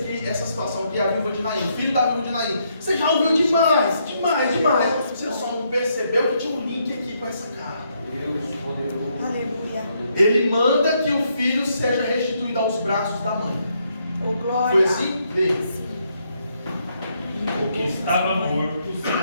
situação aqui, a viúva de Naim, o filho da viúva de Naim? Você já ouviu demais. Você só não percebeu que tinha um link aqui com essa carta. Deus poderoso. Aleluia. Ele manda que o filho seja restituído aos braços da mãe. Oh, glória. Foi assim? Vê. O que estava morto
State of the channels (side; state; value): both; inverted; correlation -0.75